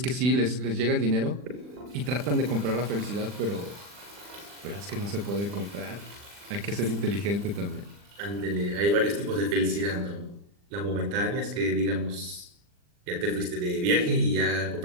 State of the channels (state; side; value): late; left; 40 ms